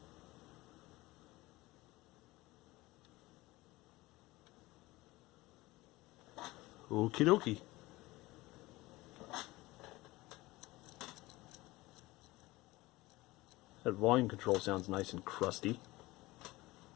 Okie dokie. That volume control sounds nice and crusty.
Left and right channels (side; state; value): right; quieter; 20.0 dB